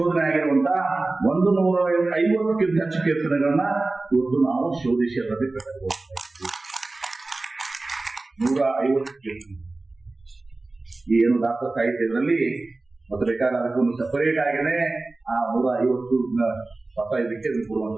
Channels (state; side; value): quieter; left; 3.2 dB